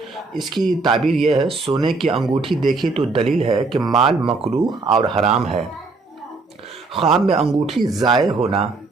اس کی تعبیر یہ ہے، سونے کی انگوٹھی دیکھے تو دلیل ہے کہ مال مکروہ اور حرام ہے۔ خواب میں انگوٹھی ضائع ہونا،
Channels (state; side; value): quieter; left; 3.8 dB